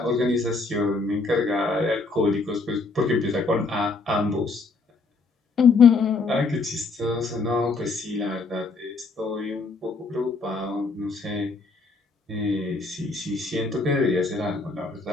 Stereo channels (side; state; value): right; quieter; 3.9 dB